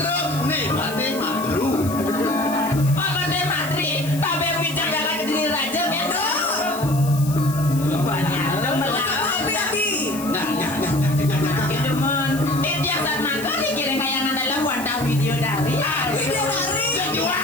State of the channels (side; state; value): left; noise; hiss, 13 dB below the sound